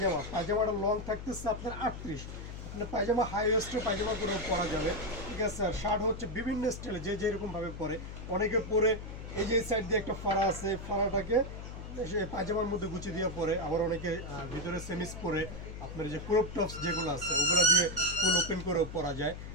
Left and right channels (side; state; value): left; noise; hum, 9 dB below the sound